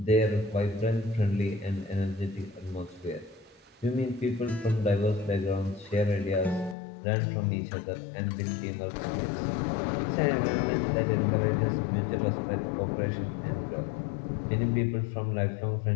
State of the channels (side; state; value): right; drops out; at 6.8 s